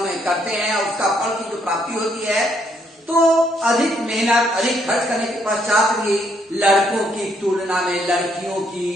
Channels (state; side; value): normal; both; correlation 0.72